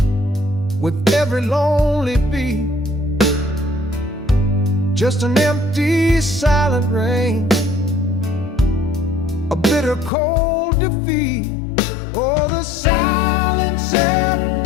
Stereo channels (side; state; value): right; drops out; at 10.1 s